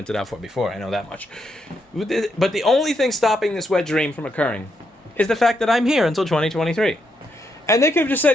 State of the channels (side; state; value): both; normal; correlation 0.79